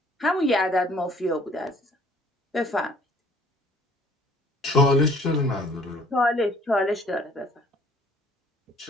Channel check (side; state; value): both; normal; correlation 0.57